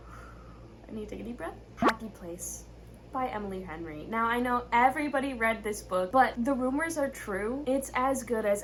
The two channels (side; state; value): both; identical; correlation 1.00